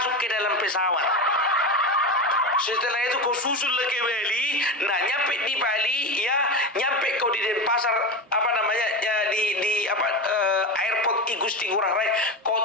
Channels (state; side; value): normal; both; correlation 0.21